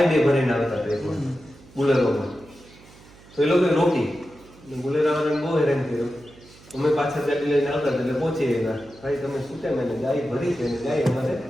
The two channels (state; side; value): noise; right; hum, 24 dB below the sound